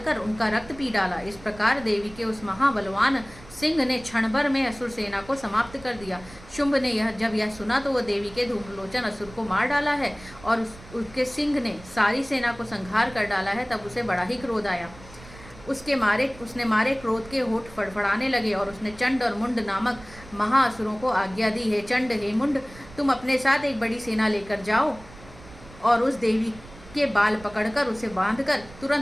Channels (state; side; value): noise; right; rumble, 19 dB below the sound